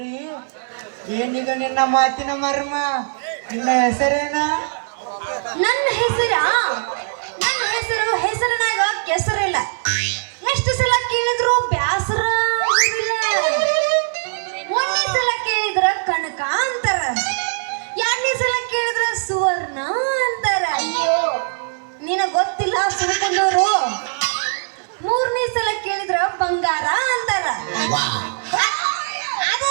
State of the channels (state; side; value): silent; left; 63 dB below the other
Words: ಏನೀಗ ನಿನ್ನ ಮಾತಿನ ಮರ್ಮ? ನಿನ್ನ ಹೆಸರೇನ? ನನ್ನ ಹೆಸರಿನಾಗ ಕೆಸರಿಲ್ಲ. ಎಷ್ಟು ಸಲ ಕೇಳಿದ್ರು ಬ್ಯಾಸರ ಆಗುದಿಲ್ಲ. ಒಂದೇ ಸಲ ಕೇಳಿದ್ರ ಕನಕ ಅಂತಾರ, ಎರಡನೇ ಸಲ ಕೇಳಿದ್ರ ಸುವರ್ಣ ಅಂತಾರ. ನಿನಗ್ ಗೊತ್ತಿಲ್ಲ ಸುಳ್ಕೊಂಡವ್ರು. ಮೂರನೇ ಸಲ ಕೇಳಿದ್ರ ಬಂಗಾರ ಅಂತಾರ.